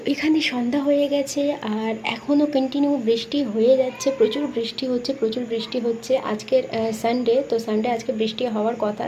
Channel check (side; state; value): both; identical; correlation 1.00